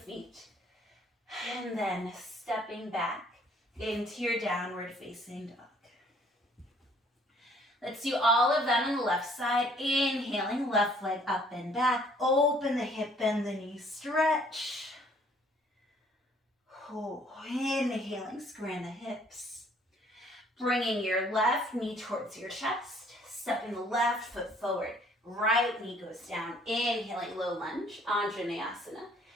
and then stepping back into your downward facing dog. Let's do all of that on the left side. Inhaling, left leg up and back, open the hip, bend the knee, stretch. Inhaling, squaring the hips. Bringing your left knee towards your chest, stepping the left foot forward, right knee goes down, inhaling low lunge, Anjaneyasana.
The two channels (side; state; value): both; normal; correlation 0.60